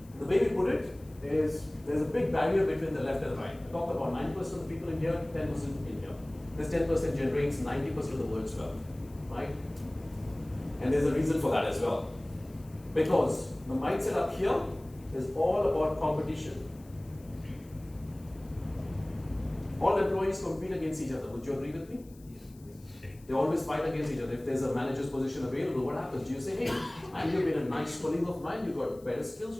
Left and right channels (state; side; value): noise; left; hiss, 27 dB below the sound